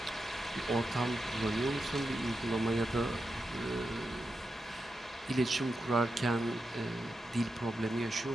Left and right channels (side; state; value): both; normal; correlation 0.88